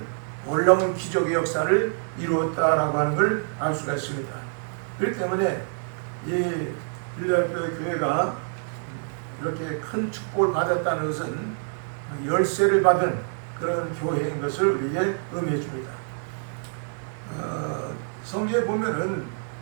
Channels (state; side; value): silent; left; 61 dB below the other